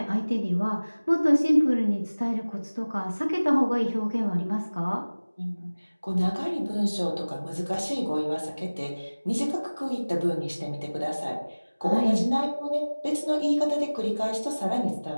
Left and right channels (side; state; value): both; inverted; correlation -1.00